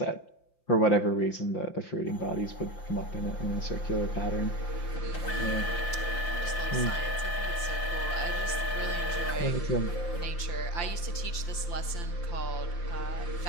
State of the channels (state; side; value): late; right; 5.8 ms